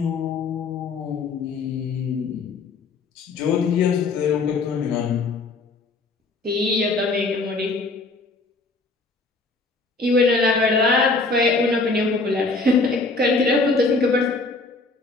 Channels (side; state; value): right; quieter; 3.7 dB